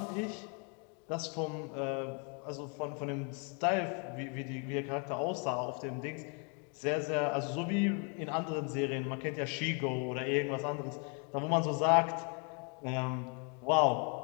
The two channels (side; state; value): right; quieter; 37.4 dB